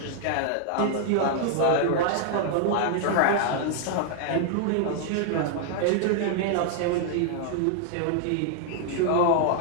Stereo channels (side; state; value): both; different; correlation 0.00